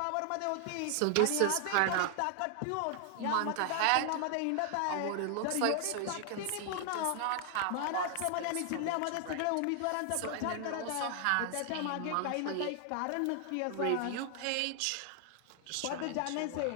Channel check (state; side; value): different; both; correlation 0.00